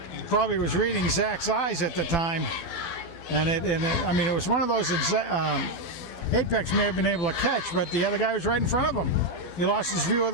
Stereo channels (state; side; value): late; right; 12 ms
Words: probably was reading Zach's eyes at the time. And I mean, it was one of those that Apex may have been able to catch, but the other guy was right in front of him. He lost his view of